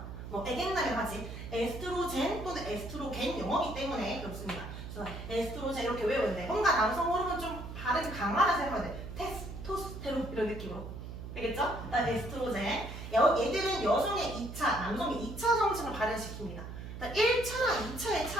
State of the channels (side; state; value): right; noise; hum, 9 dB below the sound